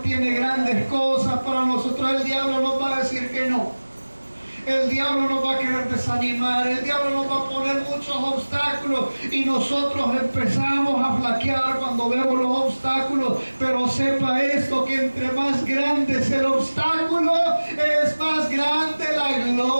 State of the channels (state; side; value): inverted; both; correlation -1.00